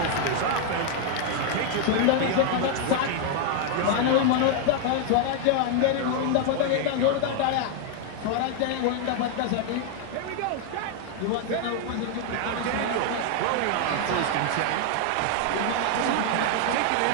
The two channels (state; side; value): different; both; correlation 0.00